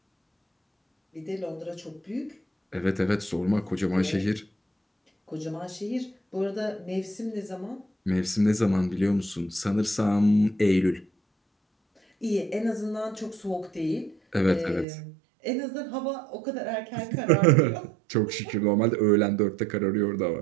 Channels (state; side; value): drops out; left; at 14.9 s